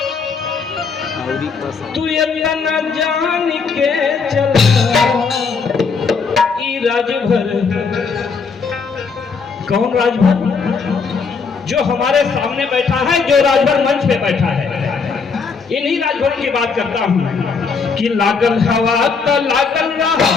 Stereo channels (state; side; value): quieter; right; 5.2 dB